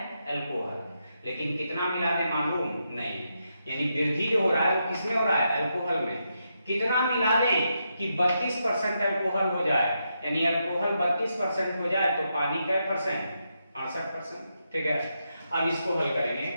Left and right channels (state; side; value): inverted; both; correlation -0.83